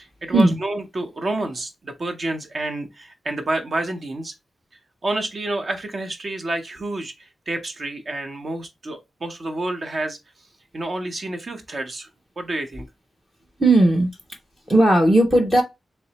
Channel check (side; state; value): both; normal; correlation 0.89